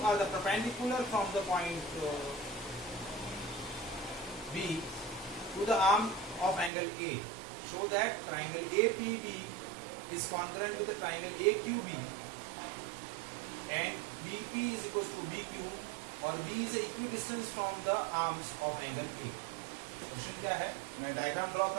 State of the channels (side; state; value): left; drops out; at 6.7 s